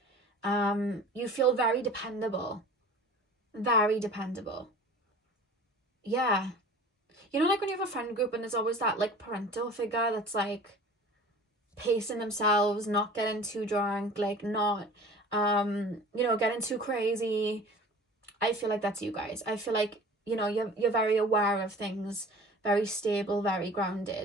You feel very dependable. Very dependable. Yeah. You know, like when you have a friend group and there's always that like parental figure that's like pacing themselves, not getting too drunk, like not, getting too crazy. I feel like that's you guys. I feel like, you're very aware of things, very stable, very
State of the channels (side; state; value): both; normal; correlation 0.42